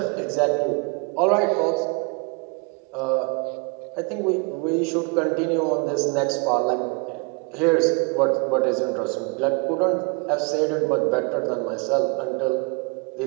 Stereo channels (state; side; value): quieter; left; 32.1 dB